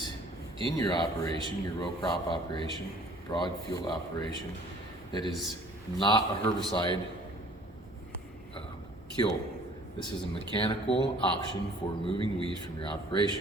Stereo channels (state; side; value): normal; both; correlation 0.53